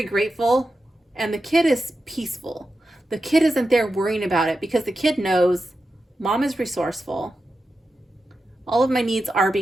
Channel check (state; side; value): normal; both; correlation 0.91